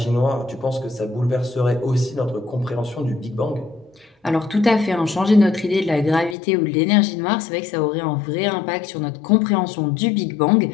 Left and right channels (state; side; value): drops out; right; at 6.4 s